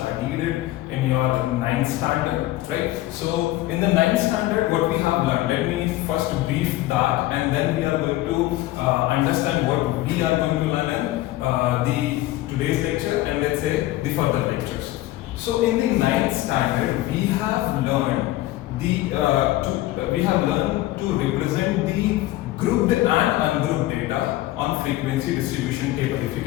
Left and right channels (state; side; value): quieter; right; 16.5 dB